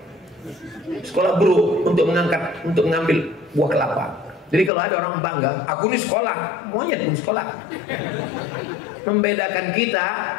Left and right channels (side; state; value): right; drops out; at 4.7 s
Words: sekolah buruk untuk mengambil buah kelapa. Jadi kalau ada orang bangga, aku ini sekolah, monyet pun sekolah. Membedakan kita